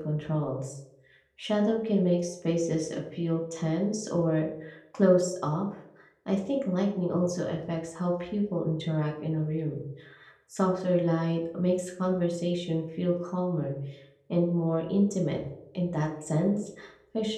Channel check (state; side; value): identical; both; correlation 1.00